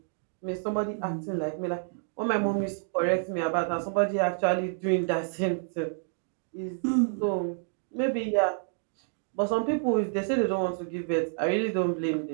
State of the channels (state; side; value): silent; left; digital silence